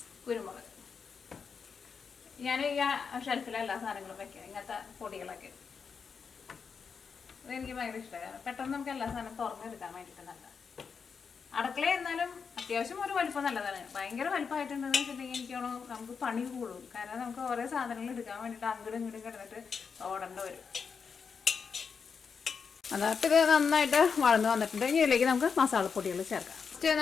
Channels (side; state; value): right; quieter; 5.9 dB